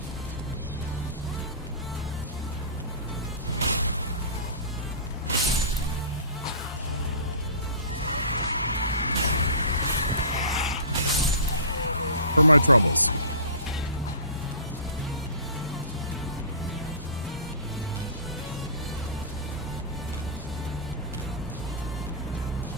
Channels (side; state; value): both; inverted; correlation -0.37